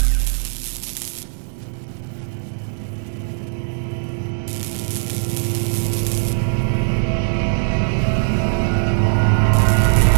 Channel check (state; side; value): silent; left; 66 dB below the other